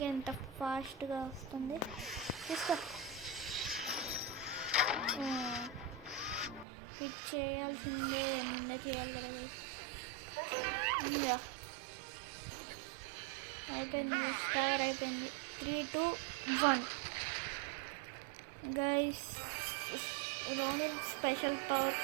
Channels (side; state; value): left; drops out; at 6.7 s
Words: ఎంత ఫాస్ట్గా వస్తుంది. తీసుకో. హిట్ చేయాల్సిందే, చేయాలి కదా. ఇంకా అయిపోయింది, కవర్ అయిపోయింది. 3, 2, 1 guys. Ronin special power